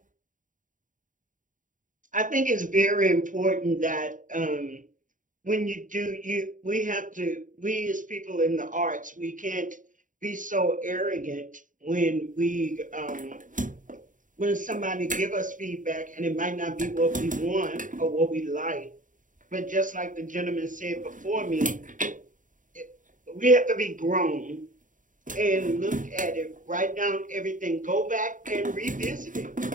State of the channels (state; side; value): late; left; 0.38 ms